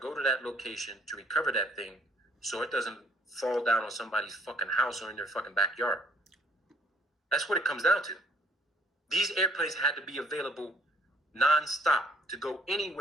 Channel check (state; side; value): normal; both; correlation 0.62